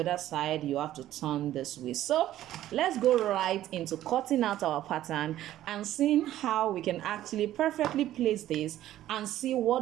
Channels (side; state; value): left; quieter; 13.3 dB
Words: side you have to turn this way. So let's go right into cutting out our pattern and seeing how we can actually perfectly place this and see